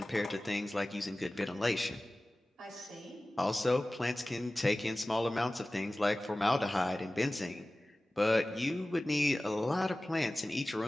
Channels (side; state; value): both; normal; correlation 0.97